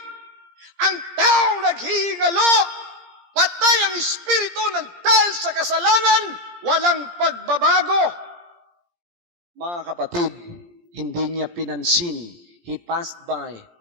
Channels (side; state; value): left; late; 17 ms